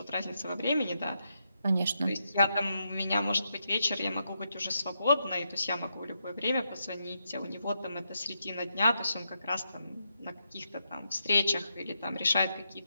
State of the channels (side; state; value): both; inverted; correlation -0.83